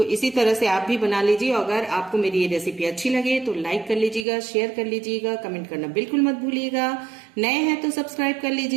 इसी तरह से आप भी बना लीजिए। अगर आपको मेरी ये रेसिपी अच्छी लगे तो लाइक कर लीजिएगा, शेयर कर लीजिएगा, कमेंट करना बिल्कुल मत भूलिएगा। नए हैं तो सब्सक्राइब कर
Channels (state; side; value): drops out; left; at 4.2 s